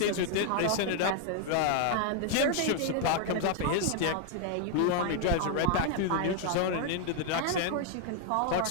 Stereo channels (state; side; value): different; both; correlation 0.00